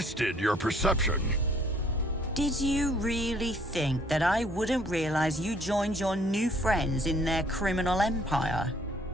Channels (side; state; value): both; normal; correlation 0.61